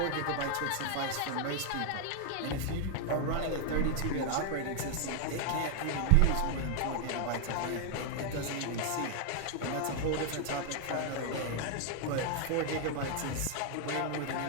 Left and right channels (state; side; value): different; both; correlation 0.00